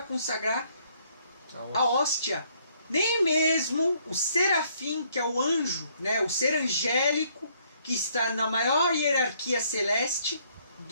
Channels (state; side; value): inverted; both; correlation -0.67